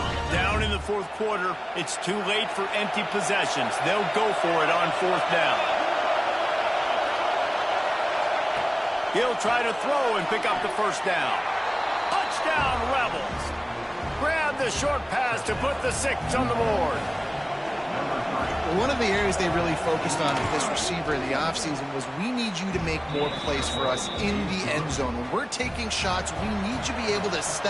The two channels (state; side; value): identical; both; correlation 1.00